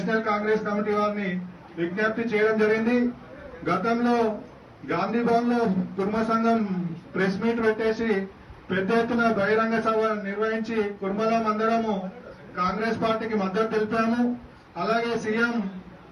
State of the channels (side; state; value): both; identical; correlation 1.00